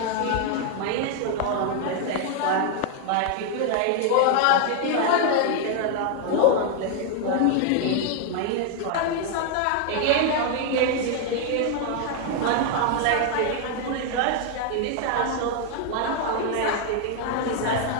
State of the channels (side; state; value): both; different; correlation 0.00